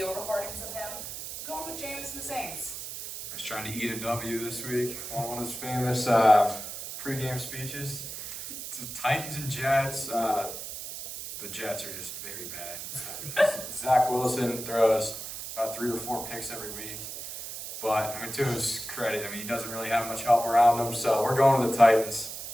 recordings of him. Going with Jameis and the Saints. He's trying to eat a W this week on one of his famous pregame speeches. It's the Titans and Jets. The Jets are just very bad. Zach Wilson throws about 3 or 4 picks every week. But, I mean, to his credit, I mean, he doesn't really have much help around him, so we're going with the Titans.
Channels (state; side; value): noise; right; hiss, 8 dB below the sound